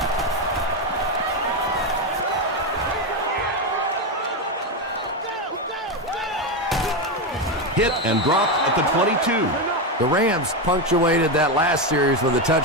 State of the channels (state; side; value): normal; both; correlation 0.10